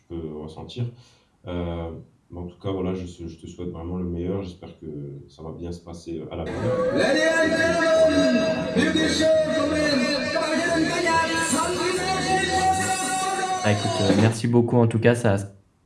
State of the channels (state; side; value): identical; both; correlation 1.00